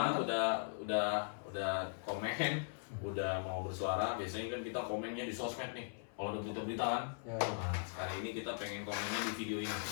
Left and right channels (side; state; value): right; silent; 51 dB below the other